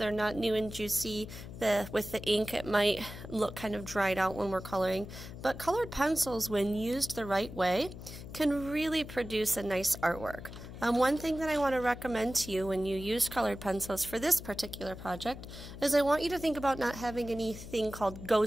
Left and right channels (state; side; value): noise; left; hum, 12 dB below the sound